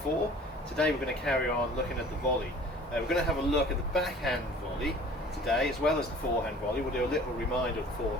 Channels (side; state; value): both; normal; correlation 0.47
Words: 4. Today we're going to carry on looking at the volley. We're going to have a look at the backhand volley today, as well as the forehand volley. We'll do a little reminder of the